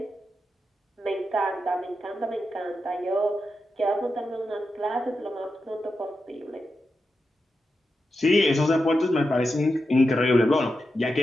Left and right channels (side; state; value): both; normal; correlation 0.88